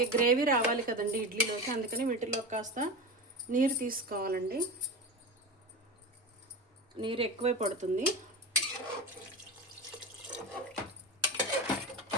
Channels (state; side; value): normal; both; correlation 0.25